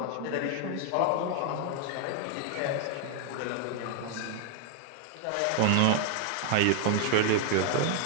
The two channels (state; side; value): different; both; correlation 0.00